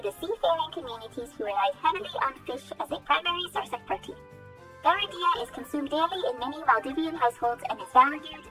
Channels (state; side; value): identical; both; correlation 1.00